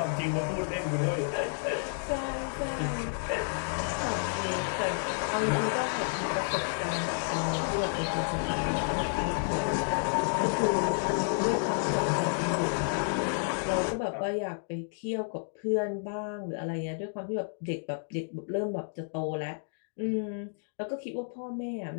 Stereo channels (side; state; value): right; silent; digital silence